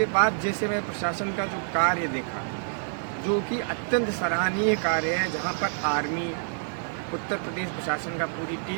बाद जैसे मैं प्रशासन का जो कार्य देखा, जो कि अत्यंत सराहनीय कार्य है, जहाँ पर आर्मी, उत्तर प्रदेश प्रशासन का पूरी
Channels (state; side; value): silent; left; 60 dB below the other